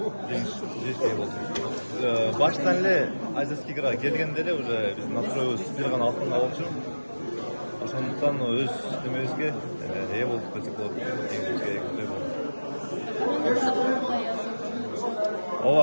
жеңишке ээ болдум. Баштан эле Азиатский играга келгенде эле уже биздин настроебуз бир гана алтынга болчу. Ошондуктан өз немебизге ээ болдук десек болот. Жеңишибизге ээ болдук.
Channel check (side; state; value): both; inverted; correlation -1.00